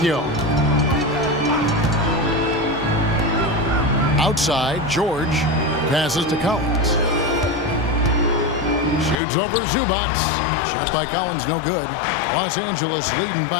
Outside, George passes to Collins. Shoots over Zubats. Shot by Collins, no good. Los Angeles leading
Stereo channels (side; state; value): right; drops out; at 9.2 s